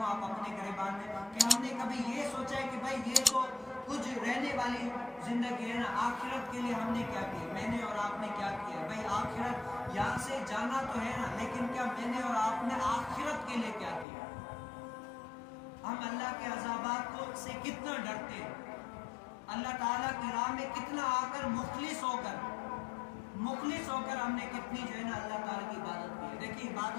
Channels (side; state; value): right; drops out; at 14.1 s